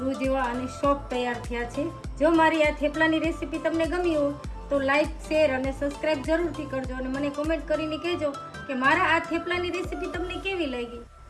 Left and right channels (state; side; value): identical; both; correlation 1.00